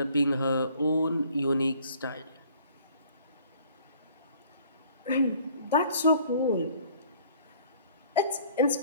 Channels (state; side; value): inverted; both; correlation -0.56